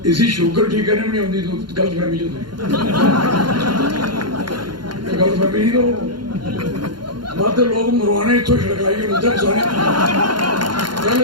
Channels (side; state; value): left; late; 0.71 ms